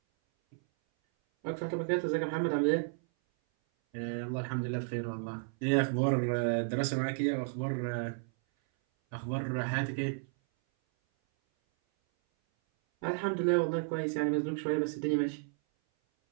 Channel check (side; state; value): left; silent; 56 dB below the other